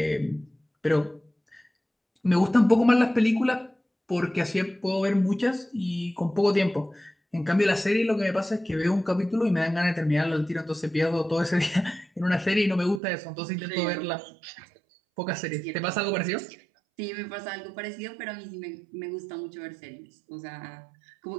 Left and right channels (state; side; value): drops out; left; at 13.0 s